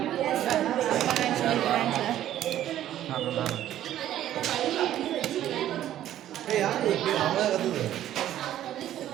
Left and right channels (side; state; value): left; quieter; 12.2 dB